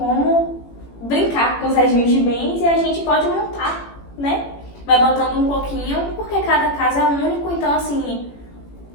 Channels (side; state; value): right; late; 18 ms